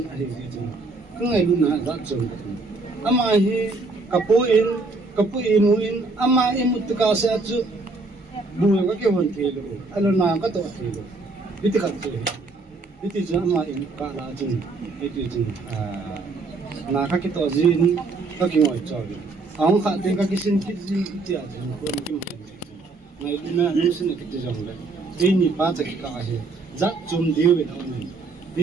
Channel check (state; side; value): quieter; left; 3.5 dB